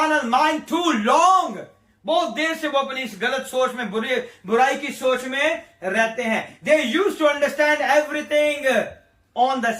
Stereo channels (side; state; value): both; identical; correlation 1.00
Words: mind too long. बहुत देर से वो अपनी इस गलत सोच में, बुराई की सोच में रहते हैं। They used to understand everything on the